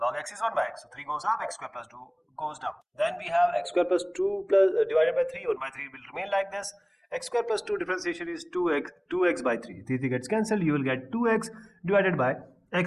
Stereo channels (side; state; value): both; identical; correlation 1.00